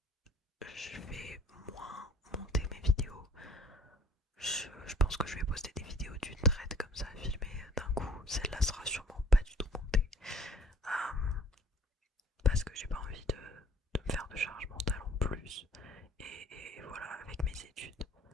vais moins monter mes vidéos. Je pense que je vais poster des vidéos d'une traite comme ça, filmées d'un coup. Celle-là sera sûrement pas du tout montée. Parce que j'ai pas envie de me faire de charge mentale en plus. Et voilà, avec mes études,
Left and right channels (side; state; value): both; normal; correlation 0.54